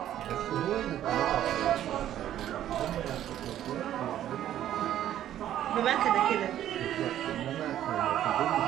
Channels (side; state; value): left; quieter; 11.8 dB